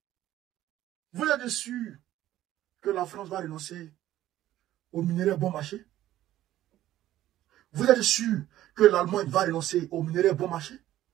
Vous êtes sûr que la France va renoncer aux minerais bon marché? Vous êtes sûr que l'Allemagne va renoncer aux minerais bon marché?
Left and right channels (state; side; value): quieter; left; 13.7 dB